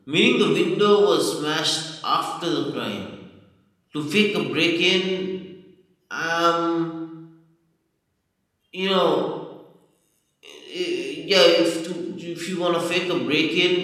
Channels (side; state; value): both; identical; correlation 1.00